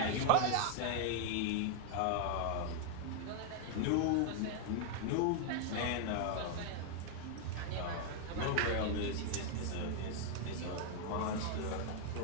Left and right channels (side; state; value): both; different; correlation 0.00